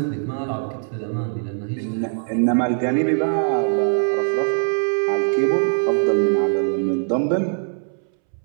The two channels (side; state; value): left; silent; 65 dB below the other